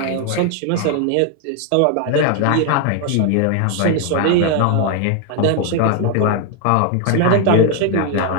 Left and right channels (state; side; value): different; both; correlation 0.01